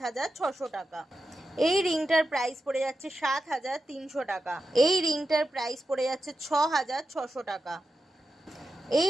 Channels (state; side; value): normal; both; correlation 0.90